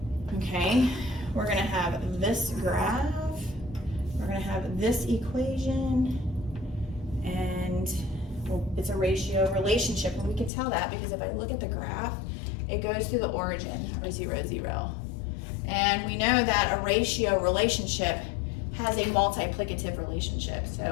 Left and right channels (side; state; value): right; drops out; at 10.5 s